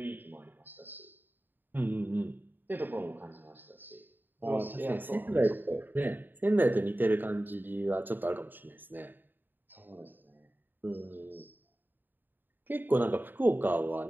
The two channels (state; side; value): late; left; 0.092 ms